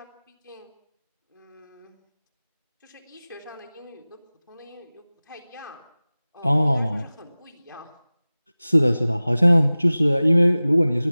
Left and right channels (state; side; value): inverted; both; correlation -0.99